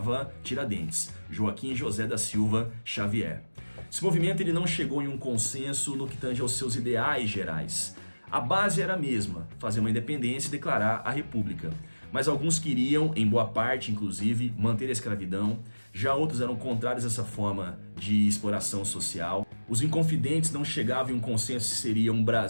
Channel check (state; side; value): inverted; both; correlation -1.00